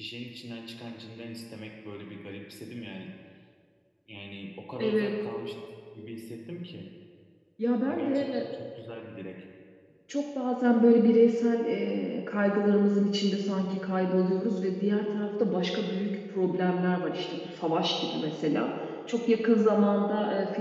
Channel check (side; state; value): both; identical; correlation 1.00